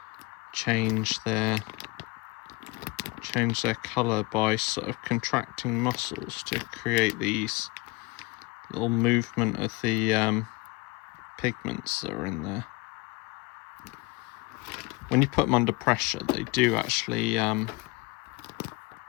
change their colour, by sort of contracting muscles to create these little movement of the pigments that are in there. When you put them under pressure, they do actually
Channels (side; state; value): right; quieter; 24.4 dB